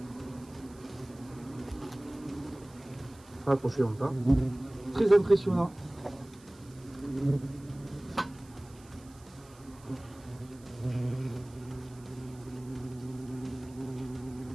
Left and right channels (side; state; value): right; noise; hiss, 25 dB below the sound